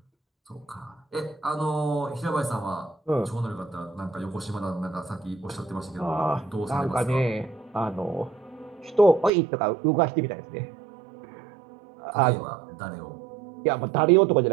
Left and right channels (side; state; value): left; drops out; at 9.3 s